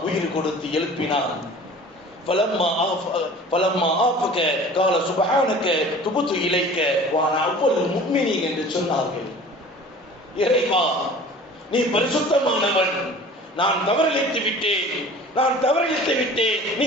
உயிர் கொடுத்து எழுப்பினான். ஃபலம்மா ஆஃபக கால சுப்ஹானக துபுது இலைக்க வஅனா அவ்வல் முஃமினீன் என்று சொன்னார்கள். இறைவா, நீ பரிசுத்தமானவன், நான் தவறிழைத்து விட்டேன், நீ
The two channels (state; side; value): normal; both; correlation 0.44